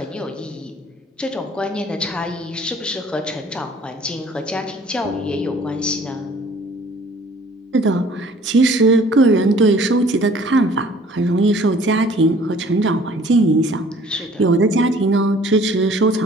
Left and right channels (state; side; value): normal; both; correlation 0.54